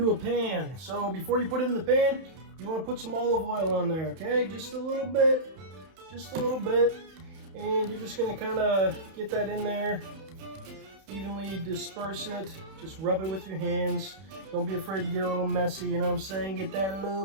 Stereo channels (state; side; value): late; left; 31 ms